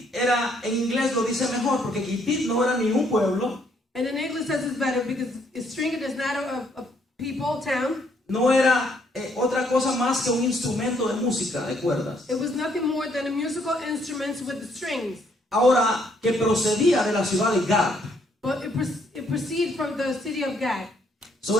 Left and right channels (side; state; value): both; normal; correlation 0.69